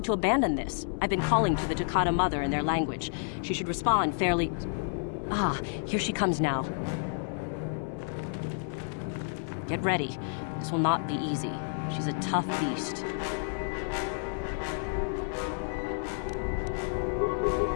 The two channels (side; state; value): right; silent; digital silence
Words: to abandon this. I've been calling to the Takata mother in their language. She should respond fairly... Ah, here she comes now. Get ready. This will not be easy. She's a tough beast.